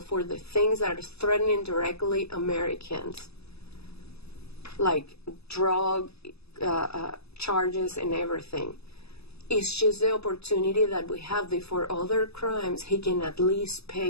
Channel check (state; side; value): late; right; 0.78 ms